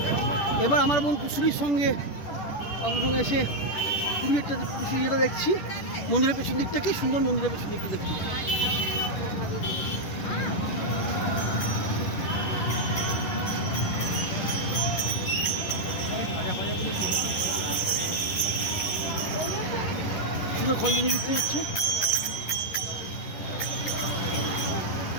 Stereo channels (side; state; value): right; late; 10 ms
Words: এবার আমার বোন কুশুরির সঙ্গে আপনার সঙ্গে এসে পুরী একটা যেটা দেখছি, মন্দিরের পেছন দিকটা কি সুন্দর, মন্দিরের পেছন দিকটা দেখছি। সুন্দর খঞ্জনি বিক্রি হচ্ছে।